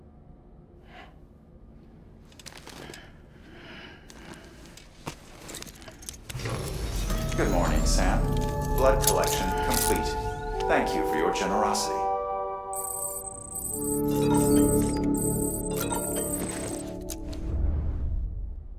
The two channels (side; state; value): both; identical; correlation 1.00